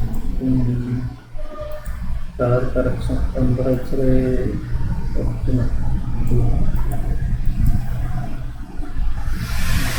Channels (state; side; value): identical; both; correlation 1.00